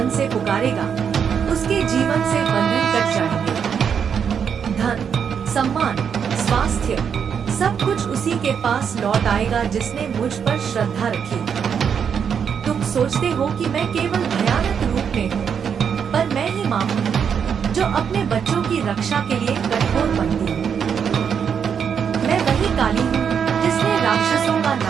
से पुकारेगा उसके जीवन से बंधन कट जाएंगे। धन, सम्मान, स्वास्थ्य सब कुछ उसी के पास लौट आएगा जिसने मुझ पर श्रद्धा रखी। तुम सोचते हो कि मैं केवल भयानक रूप में हूँ, पर मैं ही माँ हूँ जो अपने बच्चों की रक्षा के लिए कठोर बनती हूँ। मैं वही काली हूँ जिसने राक्षसों का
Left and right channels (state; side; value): quieter; left; 7.3 dB